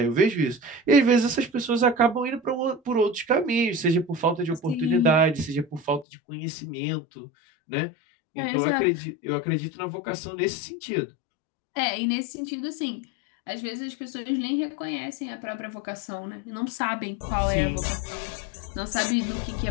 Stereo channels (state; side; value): drops out; right; at 6.1 s